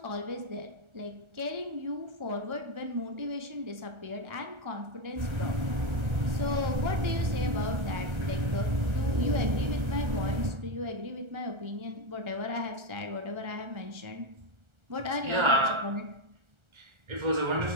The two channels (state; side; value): late; left; 1.3 ms